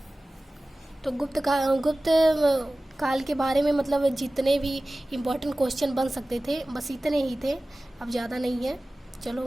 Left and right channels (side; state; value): both; normal; correlation 0.97